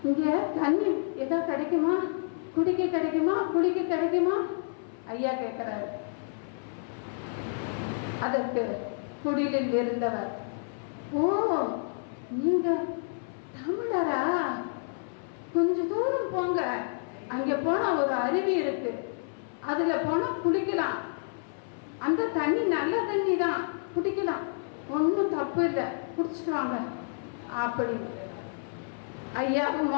இங்க தண்ணி ஏதாவது கிடைக்குமா? குடிக்க கிடைக்குமா? குளிக்க கிடைக்குமா? ஐயா கேட்கிறாரு. அதற்கு குடிலில் இருந்தவர், ஓ, நீங்க தமிழரா? கொஞ்ச தூரம் போங்க, அங்க போனா ஒரு அருவி இருக்கு, அதுல போனா குளிக்கலாம். அந்த தண்ணி நல்ல தண்ணி தான், குடிக்கலாம், ஒன்றும் தப்பு இல்லை, குடிச்சிட்டு வாங்க அப்படின்னு ஐயாவும்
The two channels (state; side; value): silent; right; 58 dB below the other